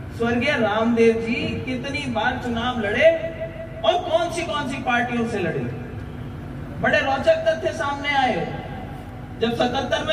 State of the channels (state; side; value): identical; both; correlation 1.00